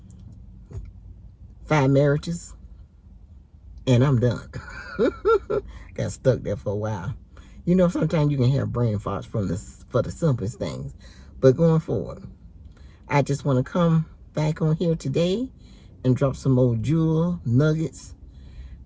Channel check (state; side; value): identical; both; correlation 1.00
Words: 5 marriages, and I'm done. Got stuck there for a while. You know, sometimes you can have brain farts for the simplest things. But going forward, I just want to come back on here today and drop some more jewel nuggets